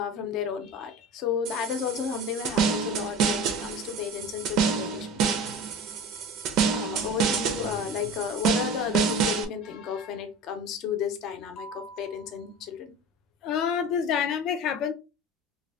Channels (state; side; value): normal; both; correlation 0.34